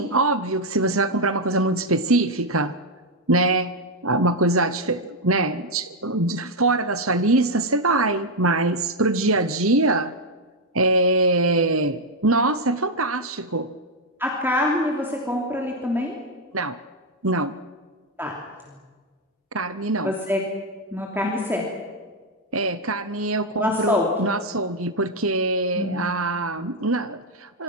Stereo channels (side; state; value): both; normal; correlation 0.03